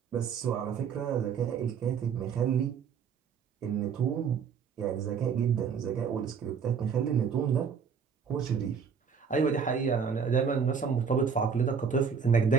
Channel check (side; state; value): left; quieter; 6.5 dB